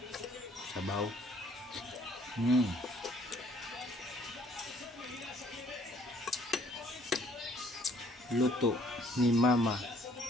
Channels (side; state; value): both; normal; correlation 0.61